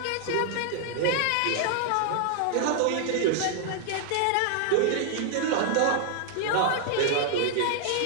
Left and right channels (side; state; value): both; different; correlation 0.00